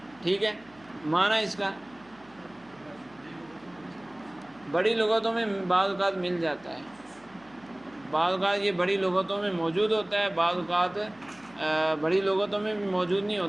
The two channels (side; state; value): right; noise; hum, 27 dB below the sound